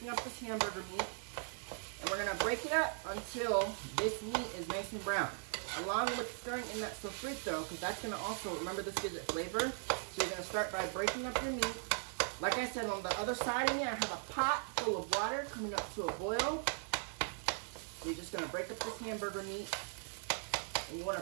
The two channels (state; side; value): silent; left; 52 dB below the other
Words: up this hamburger meat, and we're going to break it up until this meat is nice and brown, along with stirring in that sofrito, because that's going to also, remember, this gives it flavor. So you're going to start by breaking up your meat. Like I said, on the other side of me, I have a pot full of water coming up to a boil. So you're just going to break up this hamburger meat, and you want